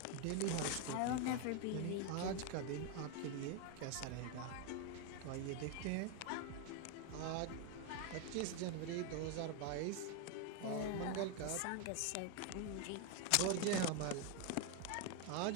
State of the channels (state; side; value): different; both; correlation 0.01